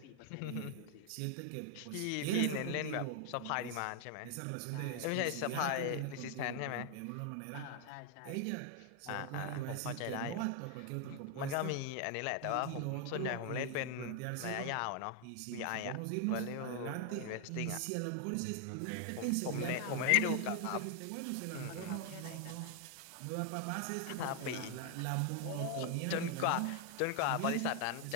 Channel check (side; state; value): both; different; correlation 0.00